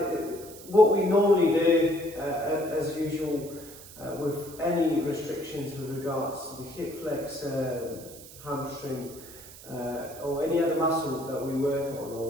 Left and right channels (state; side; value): noise; right; hiss, 17 dB below the sound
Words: What we normally do, as usual, with any restrictions with regards to the hip flexor, hamstring, or any other muscle that we work on,